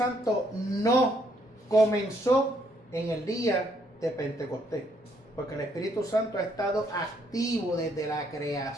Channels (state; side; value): normal; both; correlation 0.70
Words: no comenzó en el día de Pentecostés, porque el Espíritu Santo ha estado activo desde la